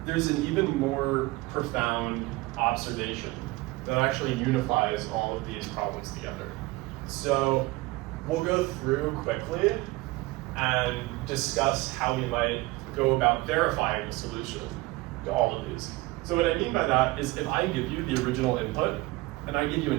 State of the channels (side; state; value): left; quieter; 20.8 dB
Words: There's an even more profound observation that actually unifies all of these problems together. So we'll go through quickly and discuss how we might go about verifying the solution to all of these. So what I mean by that is if I give you the original input and I give you